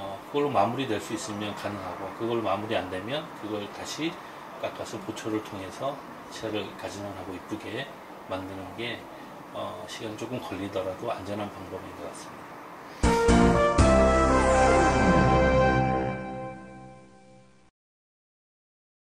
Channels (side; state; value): both; identical; correlation 1.00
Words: 그걸로 마무리될 수 있으면 가능하고, 그걸로 마무리 안 되면 그걸 다시 깎아서 보철을 통해서 치아를 가진원하고 이쁘게 만드는 게 시간이 조금 걸리더라도 안전한 방법인 것 같습니다.